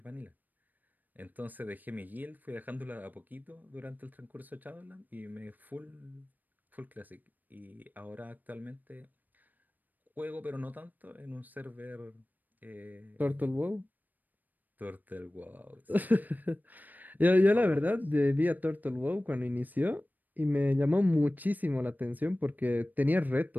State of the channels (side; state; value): left; late; 0.086 ms